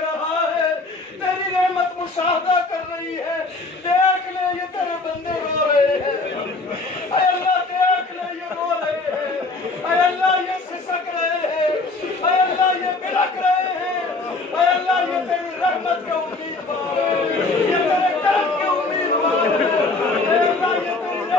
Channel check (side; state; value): right; quieter; 3.5 dB